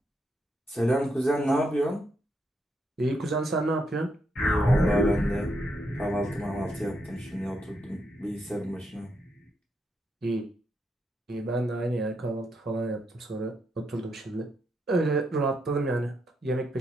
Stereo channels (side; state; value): both; normal; correlation 0.80